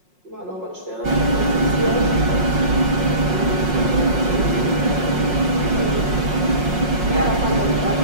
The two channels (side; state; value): left; late; 5.5 ms